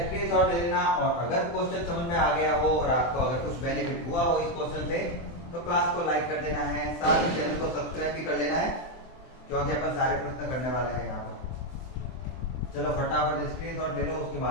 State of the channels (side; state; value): right; late; 24 ms